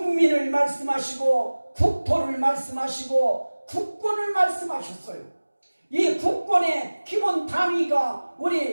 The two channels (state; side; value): inverted; both; correlation -1.00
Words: 말씀하시고 국토를 말씀하시고 국권을 말씀하셨어요. 이 국권의 기본 단위가